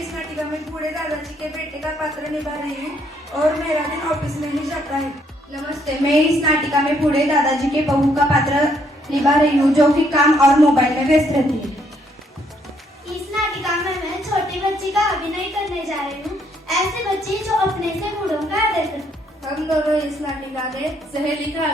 नाटिका में बूढ़े दादाजी के बेटे का पात्र निभा रही हूँ और मेरा दिन ऑफिस में ही जाता है। नमस्ते, मैं इस नाटिका में बूढ़े दादाजी के बहू का पात्र निभा रही हूँ जो कि काम और मोबाइल में व्यस्त रहती है। इस नाटिका में मैं छोटी बच्ची का अभिनय करने जा रही हूँ, ऐसे बच्ची जो अपने से बूढ़ों का आदर करती। हम दोनों इस नाटिका में सहेली का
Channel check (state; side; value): normal; both; correlation 0.70